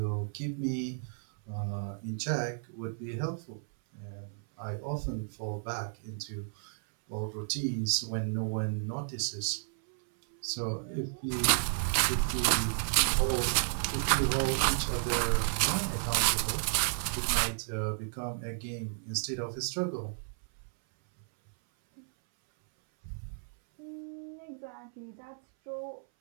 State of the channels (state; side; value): silent; left; 56 dB below the other